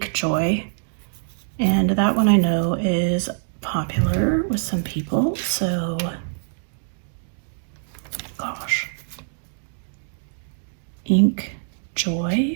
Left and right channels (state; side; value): silent; left; digital silence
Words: Joy. And that one I know is popular with some people, so gosh. Ink